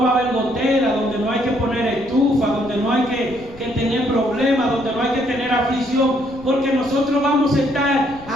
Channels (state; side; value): noise; left; rumble, 22 dB below the sound